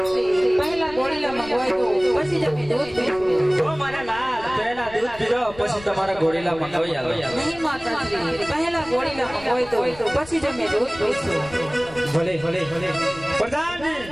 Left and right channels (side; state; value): left; noise; rumble, 18 dB below the sound